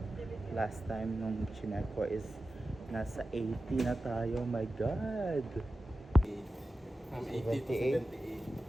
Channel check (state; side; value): normal; both; correlation 0.93